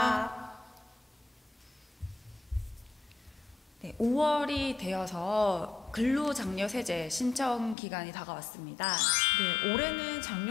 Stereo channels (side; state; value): right; drops out; at 7.8 s